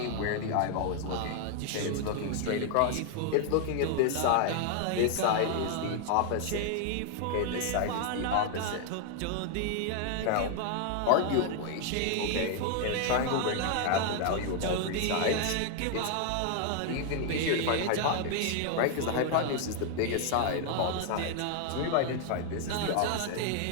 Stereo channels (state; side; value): different; both; correlation 0.00